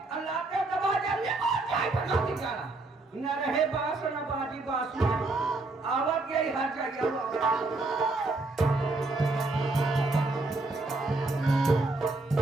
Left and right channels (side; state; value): left; quieter; 3.2 dB